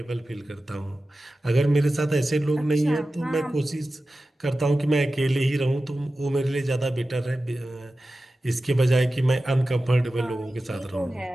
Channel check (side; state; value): both; normal; correlation 0.94